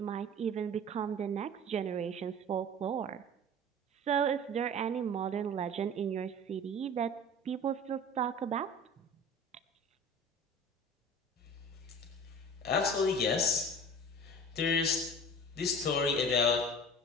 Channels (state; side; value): normal; both; correlation 0.39